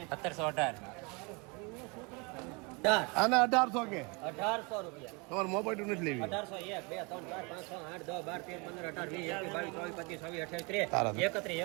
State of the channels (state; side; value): quieter; left; 30.0 dB